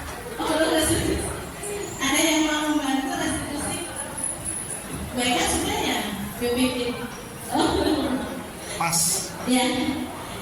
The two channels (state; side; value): identical; both; correlation 1.00